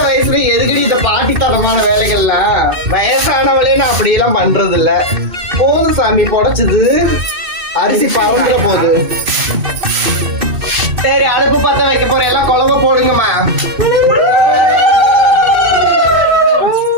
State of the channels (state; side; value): late; left; 2.6 ms